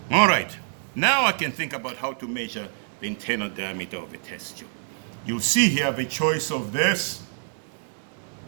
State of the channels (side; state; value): left; silent; digital silence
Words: All right. Now I can think about how to measure the internal diameter of a test tube. You'll see here the choice of this